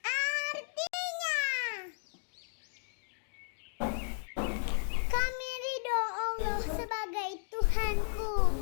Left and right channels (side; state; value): right; silent; digital silence